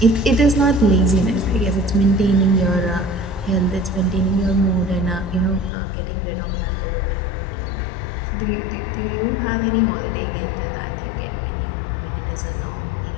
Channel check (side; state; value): right; drops out; at 5.7 s